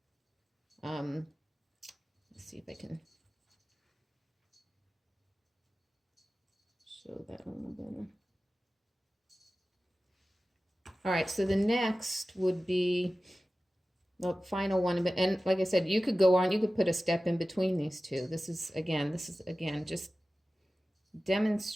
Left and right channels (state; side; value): normal; both; correlation 0.96